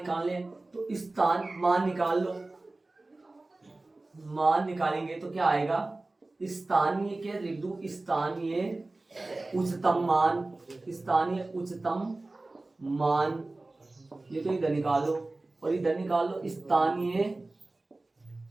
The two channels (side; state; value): left; quieter; 3.0 dB